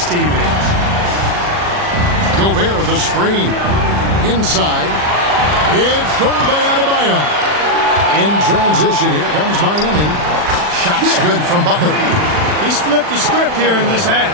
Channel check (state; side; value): late; left; 40 ms